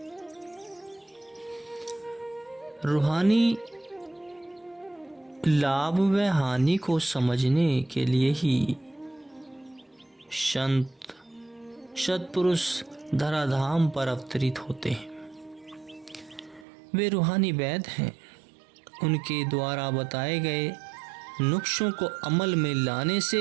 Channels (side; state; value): left; drops out; at 16.7 s